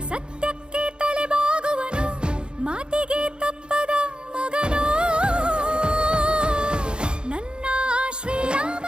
ಸತ್ಯಕ್ಕೆ ತಲೆಬಾಗುವನು, ಮಾತಿಗೆ ತಪ್ಪದ ಮಗನು ನನ್ನ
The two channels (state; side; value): late; left; 0.051 ms